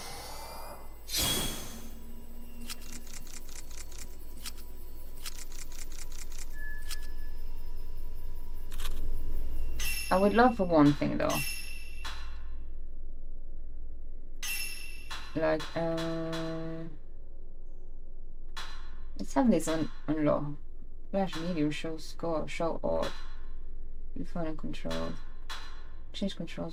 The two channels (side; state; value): both; identical; correlation 1.00